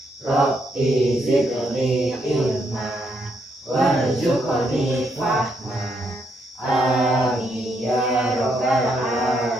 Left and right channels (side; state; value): both; normal; correlation 0.76